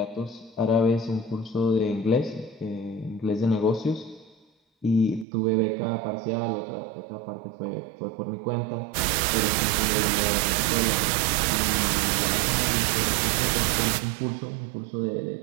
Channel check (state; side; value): drops out; left; at 5.2 s